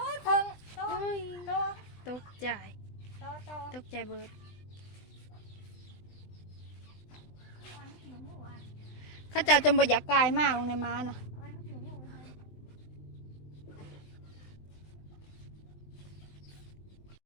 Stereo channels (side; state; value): right; late; 20 ms